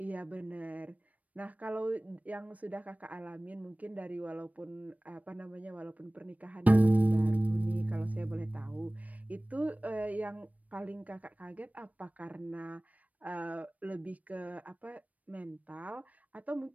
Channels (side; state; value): left; late; 0.071 ms